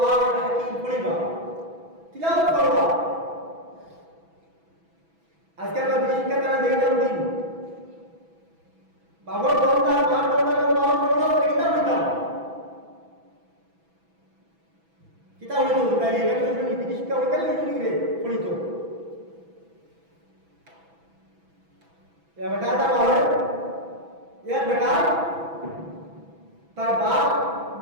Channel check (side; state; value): left; late; 6.1 ms